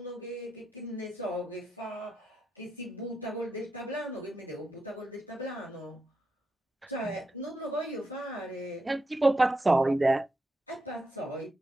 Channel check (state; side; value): normal; both; correlation 0.85